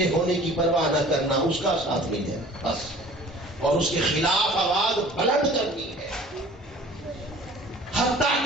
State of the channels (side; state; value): both; normal; correlation 0.48